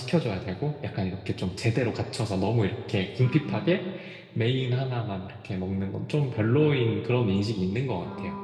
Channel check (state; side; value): identical; both; correlation 1.00